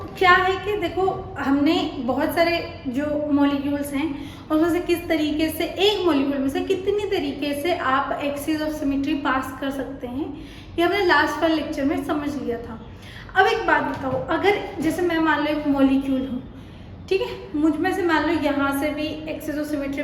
क्या है कि देखो हमने बहुत सारे जो मॉलिक्यूल्स हैं उसमें से किस तरीके से एक मॉलिक्यूल में से कितनी तरीके से आप एक्सिस ऑफ सिमेट्री पास कर सकते हैं, ये हमने लास्ट वाले लेक्चर में समझ लिया था। अब एक बात बताओ, अगर जैसे मैं मान लो एक मॉलिक्यूल हूँ, ठीक है, मुझ में से मान लो यहाँ से भी एक्सिस ऑफ सिमेट्री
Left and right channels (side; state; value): both; identical; correlation 1.00